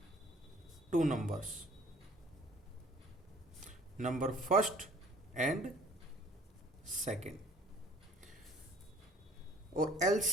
2 numbers, number first and second, और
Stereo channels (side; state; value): both; normal; correlation 0.54